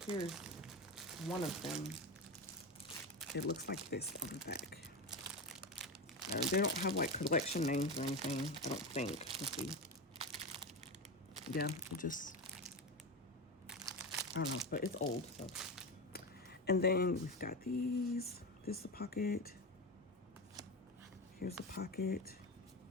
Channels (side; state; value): both; normal; correlation 0.19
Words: Here's one of them. It looks like this on the back. They don't have like collection names or anything, I don't think. Let's see. Yeah, it just, I don't know, but it's old, so. And then we've got these. This is a pocket. Here's a pocket.